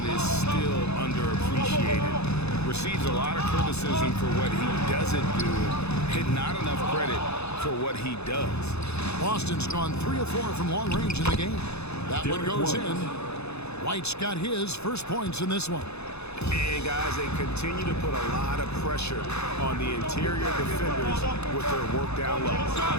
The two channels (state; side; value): late; right; 0.80 ms